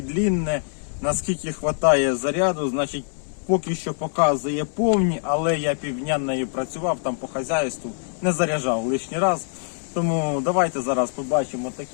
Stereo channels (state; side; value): silent; right; 63 dB below the other